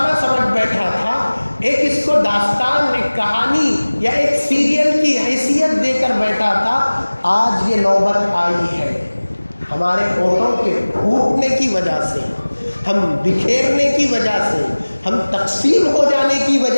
سمجھ بیٹھا تھا، ایک اس کو داستان، ایک کہانی یا ایک سیریل کی حیثیت دے کر بیٹھا تھا۔ آج یہ نوبت آئی ہے ہمارے ووٹوں کے پھوٹنے کی وجہ سے، ہم بکھیرنے کی وجہ سے، ہم تقسیم ہو جانے کی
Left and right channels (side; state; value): both; inverted; correlation -1.00